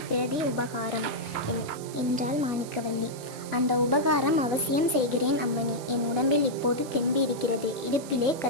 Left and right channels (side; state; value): right; noise; hiss, 16 dB below the sound